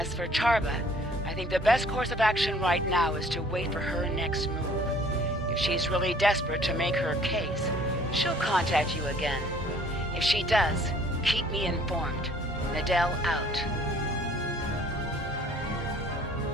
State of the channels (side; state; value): both; normal; correlation 0.56